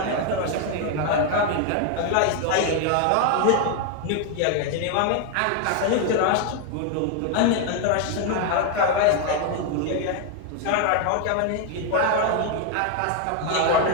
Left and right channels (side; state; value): both; different; correlation 0.01